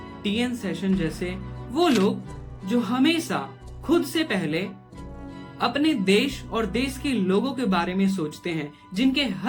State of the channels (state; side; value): identical; both; correlation 1.00